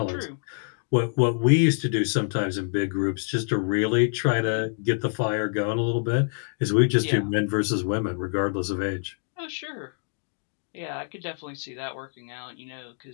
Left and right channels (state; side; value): silent; right; 61 dB below the other